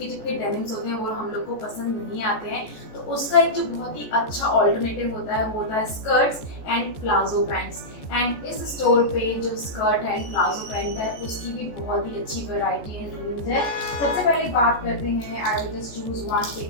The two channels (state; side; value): late; right; 14 ms